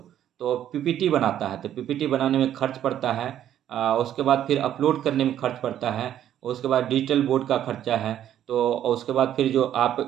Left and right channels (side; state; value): left; quieter; 11.0 dB